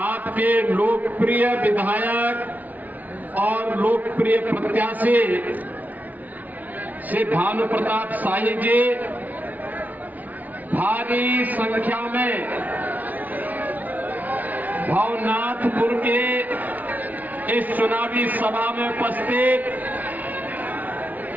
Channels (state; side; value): late; left; 0.077 ms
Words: आपके लोकप्रिय विधायक और लोकप्रिय प्रत्याशी श्री भानु प्रताप शाही जी, भारी संख्या में भवनाथपुर के इस चुनावी सभा में उपस्थित